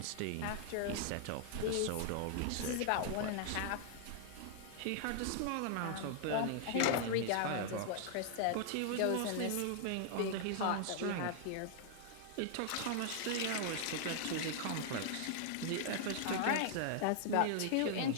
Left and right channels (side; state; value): both; different; correlation -0.01